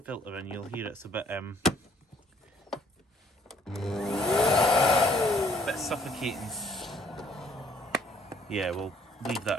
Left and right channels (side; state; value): both; normal; correlation 0.61